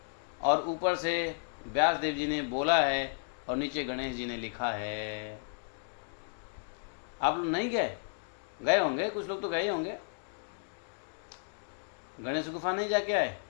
और ऊपर से व्यास देव जी ने बोला है और नीचे गणेश जी ने लिखा है। आप लोग नहीं गए? गए होंगे, कुछ लोग तो गए होंगे। गणेश गुफा नहीं जाके आए?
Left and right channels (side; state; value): right; silent; digital silence